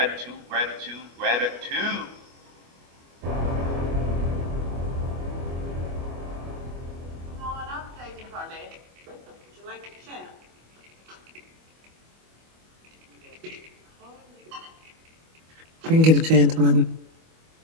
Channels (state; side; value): late; left; 25 ms